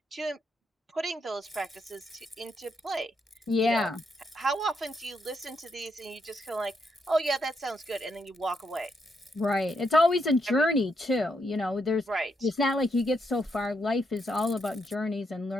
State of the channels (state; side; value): normal; both; correlation 0.79